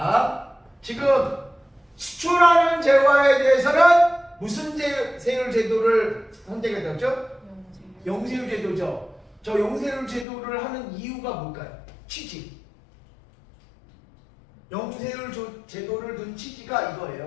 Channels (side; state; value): right; drops out; at 10.2 s